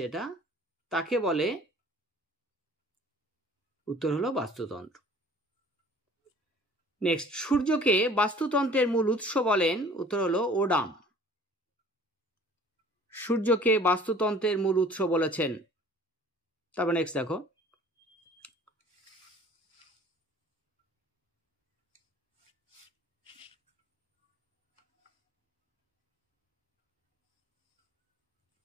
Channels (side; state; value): both; normal; correlation 0.50